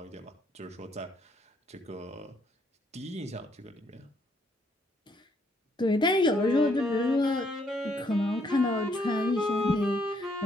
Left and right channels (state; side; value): normal; both; correlation 0.70